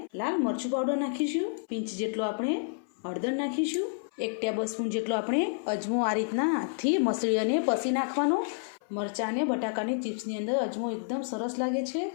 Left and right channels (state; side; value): silent; right; 57 dB below the other